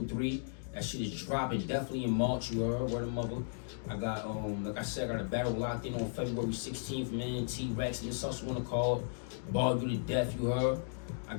3. That shit is dropping definitely in March, you heard. Word of mother. I got, like I said, I got a battle locked in on February 16th, man. T-Rex and this also wanna call it. Ball You to Death, you heard. I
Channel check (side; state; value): right; silent; digital silence